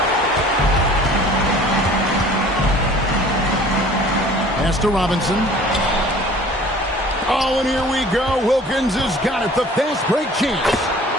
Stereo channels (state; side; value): normal; both; correlation 0.49